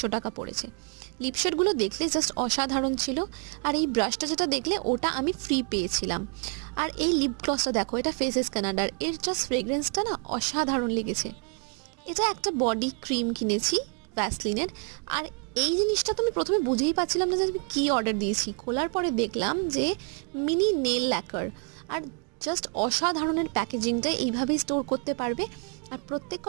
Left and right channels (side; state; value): left; quieter; 38.5 dB